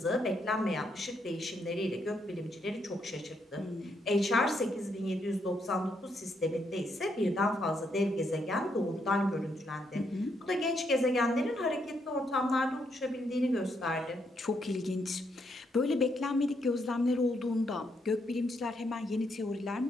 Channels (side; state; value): both; normal; correlation 0.76